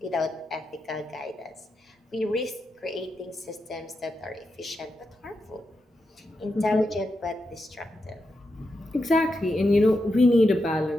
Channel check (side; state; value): both; normal; correlation 0.86